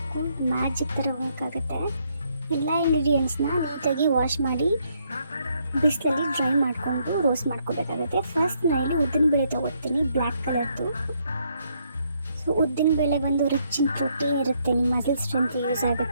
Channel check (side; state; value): both; inverted; correlation -0.73